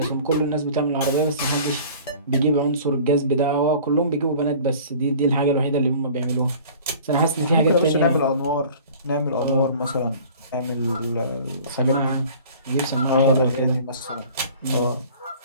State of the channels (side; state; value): both; inverted; correlation -0.46